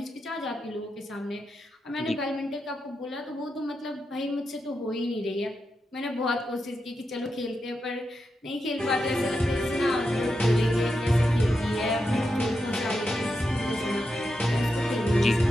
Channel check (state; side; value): normal; both; correlation 0.87